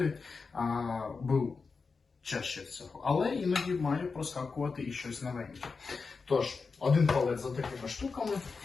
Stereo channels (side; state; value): right; quieter; 4.7 dB